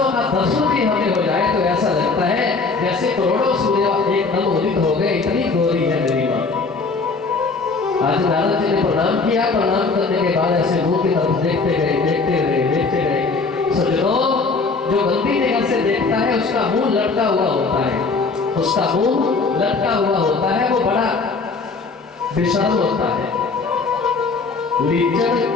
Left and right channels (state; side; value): quieter; right; 4.2 dB